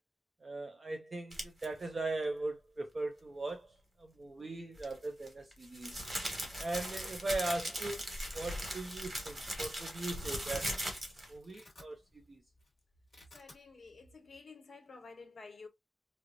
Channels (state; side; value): normal; both; correlation 0.92